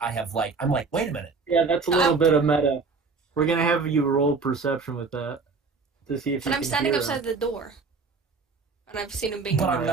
I'm like, wait a minute. Yeah, that's a little bit of meta. We're going to have you roll perception with that to see if you And can I'm standing hear outside the door. And I've seen him being But I'm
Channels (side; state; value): left; quieter; 4.5 dB